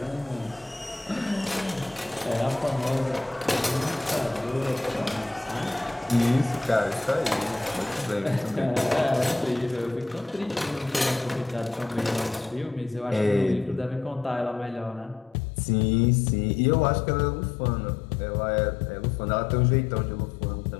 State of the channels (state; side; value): drops out; right; at 15.4 s